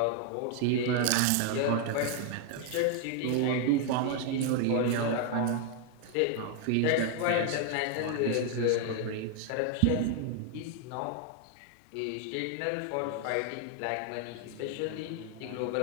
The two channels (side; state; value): both; different; correlation 0.00